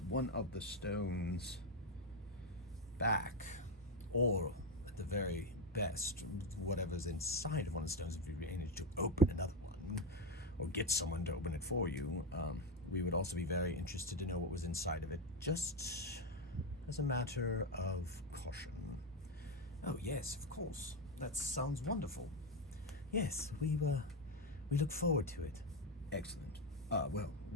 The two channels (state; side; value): normal; both; correlation 0.08